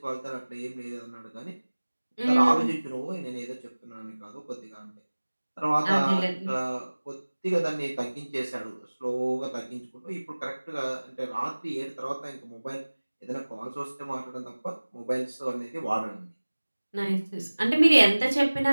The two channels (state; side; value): inverted; both; correlation -1.00